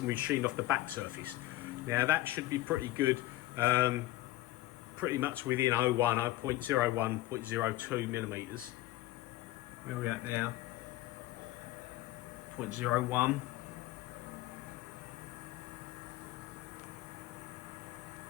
we've machined off the back surface. Now that should be pretty good, pretty much within 0.01, 0.02 millimeters. Where are we at now? 0.01.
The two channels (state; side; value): quieter; right; 16.5 dB